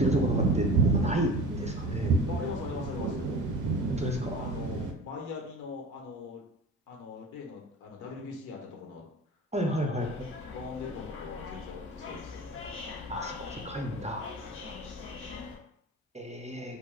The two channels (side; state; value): both; normal; correlation 0.36